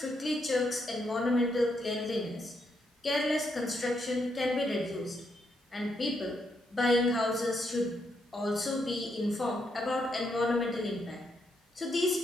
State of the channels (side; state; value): both; normal; correlation 0.78